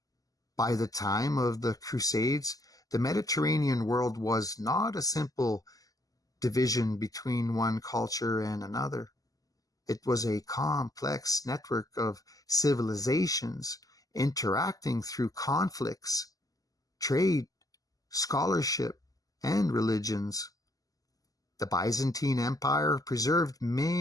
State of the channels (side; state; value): right; late; 0.17 ms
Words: By the time of the Crusades, the Mediterranean world was not a simple division between one culture and another. It was a complex network of civilizations interacting through conflicts, trade, scholarship, and religions. The Byzantine Empire preserved